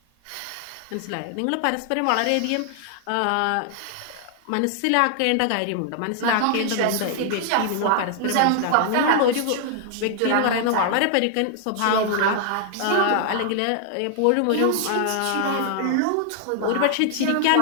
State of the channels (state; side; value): different; both; correlation 0.00